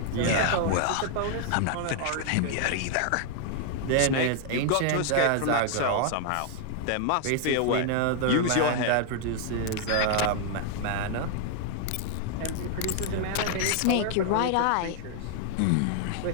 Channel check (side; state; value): both; different; correlation 0.00